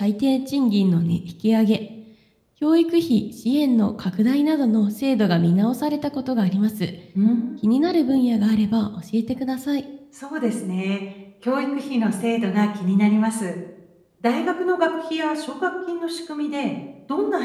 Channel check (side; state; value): both; identical; correlation 1.00